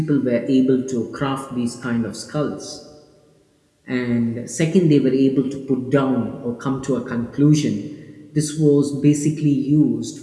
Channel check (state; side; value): identical; both; correlation 1.00